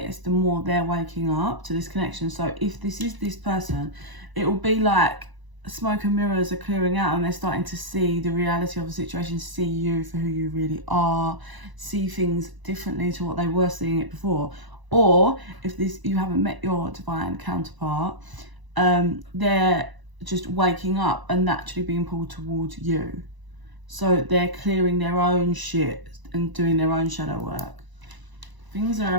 the more they're waking up to this connection. So if this is this person, it will be like smoke and mirrors are clearing out, and they're starting to see the reality of the situation, see you for who you really are, see things differently to what they were seeing it before. Or if you haven't met your divine counterpart, they're just waking up and naturally being pulled towards you. So they're clearing their own shit and doing their own shadow work. Things are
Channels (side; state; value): left; late; 1.0 ms